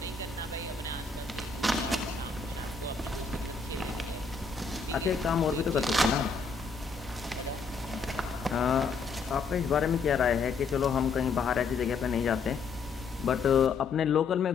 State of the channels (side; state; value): right; quieter; 4.7 dB